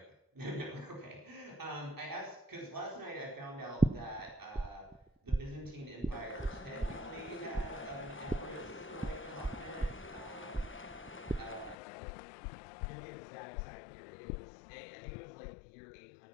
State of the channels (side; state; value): right; drops out; at 11.8 s